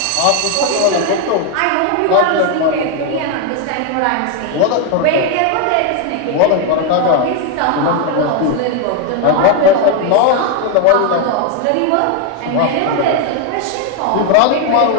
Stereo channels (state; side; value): different; both; correlation 0.01